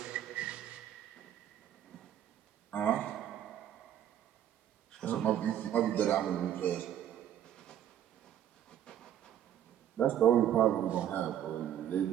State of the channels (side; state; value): left; quieter; 10.6 dB